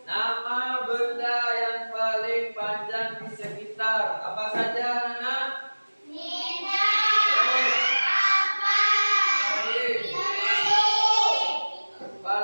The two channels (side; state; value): both; inverted; correlation -1.00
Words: nama benda yang paling panjang di sekitar. Apa saja, anak? Apa